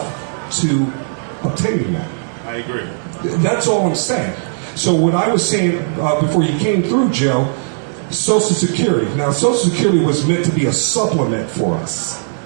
to obtain that. I agree. That's all I'm saying. So what I was saying before you came through, Joe, Social Security. Now, Social Security was meant to be a supplement for us.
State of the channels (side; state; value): left; silent; digital silence